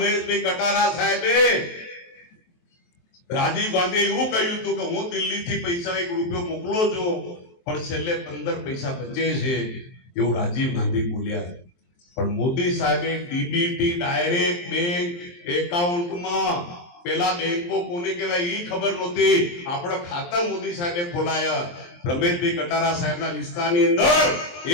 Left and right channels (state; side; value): late; right; 23 ms